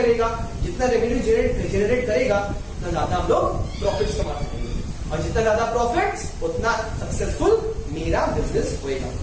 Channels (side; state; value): both; identical; correlation 1.00